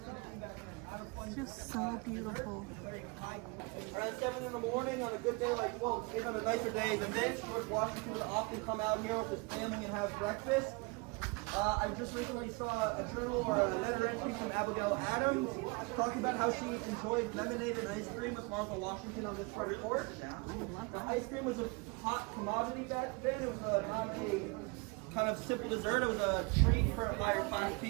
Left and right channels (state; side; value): quieter; left; 28.8 dB